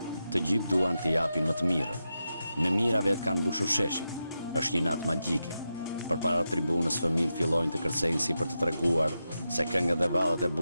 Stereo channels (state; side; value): inverted; both; correlation -0.89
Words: Të gjithë duan të japin më të mirën. Me mira vetë kanë mbushur sheshin. Është një natë magjike. Përpara tribunës fëmijët fillojnë të kërcejnë si për të treguar se këngët dhe vallet e